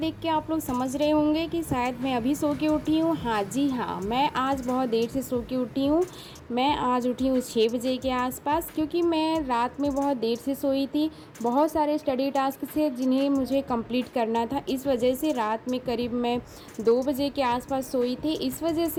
के आप लोग समझ रहे होंगे कि शायद मैं अभी सो के उठी हूँ। हाँ जी हाँ, मैं आज बहुत देर से सो के उठी हूँ। मैं आज उठी हूँ 6 बजे के आसपास, क्योंकि मैं रात में बहुत देर से सोई थी। बहुत सारे स्टडी टास्क थे जिन्हें मुझे कंप्लीट करना था, इस वजह से रात में करीब मैं 2 बजे के आसपास सोई थी। इस वजह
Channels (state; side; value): identical; both; correlation 1.00